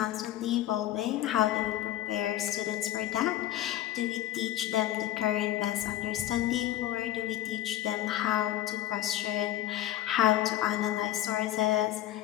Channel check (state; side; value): quieter; right; 13.1 dB